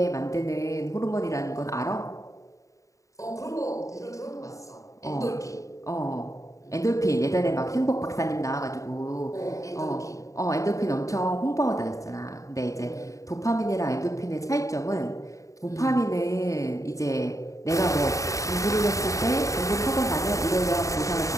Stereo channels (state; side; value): late; right; 0.16 ms